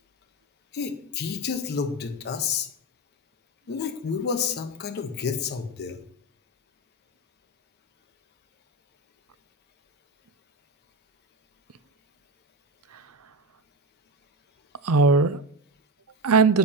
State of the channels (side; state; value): both; normal; correlation 0.17